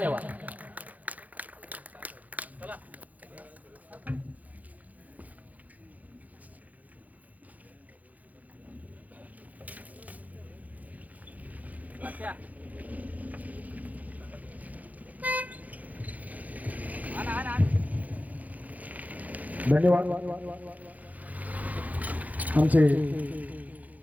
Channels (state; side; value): late; left; 0.077 ms